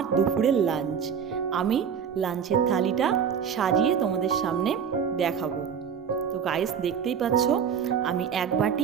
দুপুরের লাঞ্চ। আমি লাঞ্চের থালিটা সাজিয়ে তোমাদের সামনে দেখাবো। তো গাইস দেখতেই পাচ্ছ আমি এক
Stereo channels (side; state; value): left; quieter; 7.4 dB